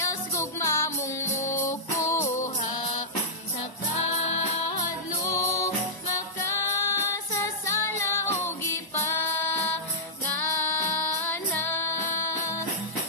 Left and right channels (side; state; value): right; late; 1.0 ms